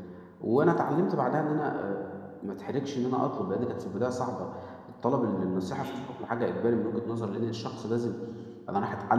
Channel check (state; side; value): identical; both; correlation 1.00